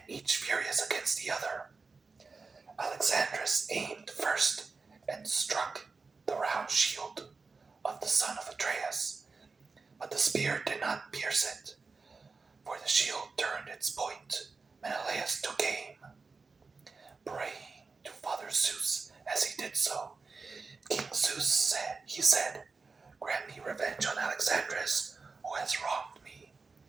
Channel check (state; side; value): quieter; left; 4.3 dB